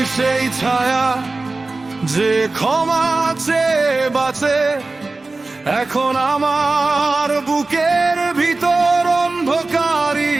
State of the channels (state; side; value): quieter; left; 3.4 dB